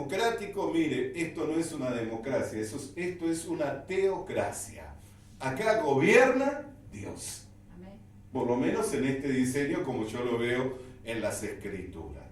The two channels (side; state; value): both; identical; correlation 1.00